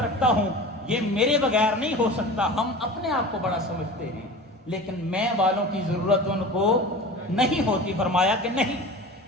رکھتا ہوں, یہ میرے بغیر نہیں ہو سکتا. ہم اپنے آپ کو بڑا سمجھتے ہیں, لیکن میں والوں کی ضرورت ان کو نہیں ہوتی. فرمایا کہ نہیں,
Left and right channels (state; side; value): normal; both; correlation 0.35